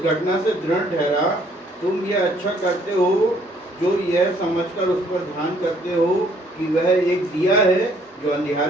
घटना से दृढ़ ठहरा, तुम यह अच्छा करते हो जो यह समझकर उस पर ध्यान करते हो कि वह एक दिया है जो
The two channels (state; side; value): normal; both; correlation 0.63